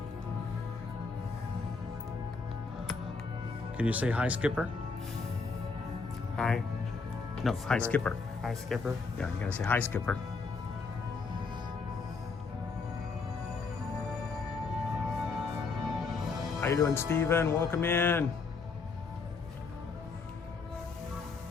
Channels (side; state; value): right; quieter; 4.5 dB